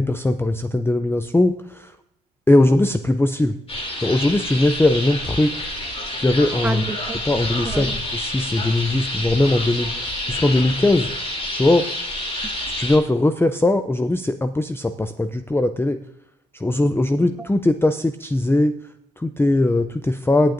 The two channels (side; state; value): both; normal; correlation 0.87